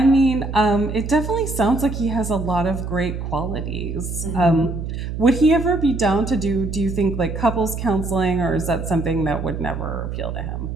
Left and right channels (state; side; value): noise; right; hum, 5 dB below the sound